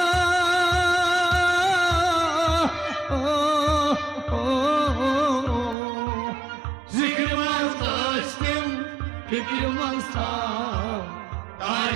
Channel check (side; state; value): left; drops out; at 5.8 s